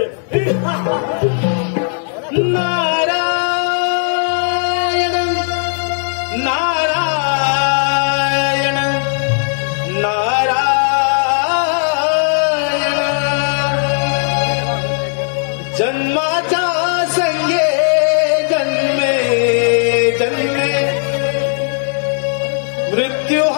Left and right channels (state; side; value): silent; right; 59 dB below the other